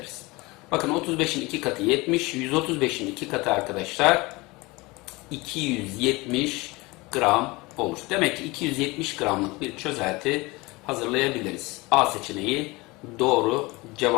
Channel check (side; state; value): right; quieter; 23.2 dB